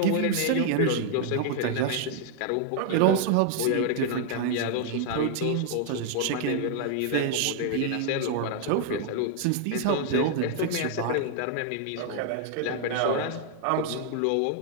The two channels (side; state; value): both; different; correlation 0.00